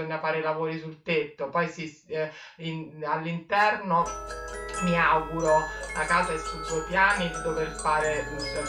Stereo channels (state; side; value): identical; both; correlation 1.00